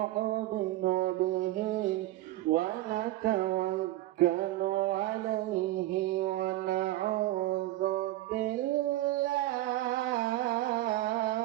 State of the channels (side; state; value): left; quieter; 16.3 dB